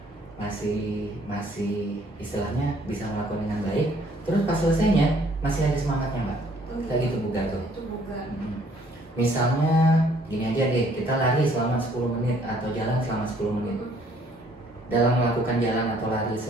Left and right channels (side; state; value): both; normal; correlation 0.62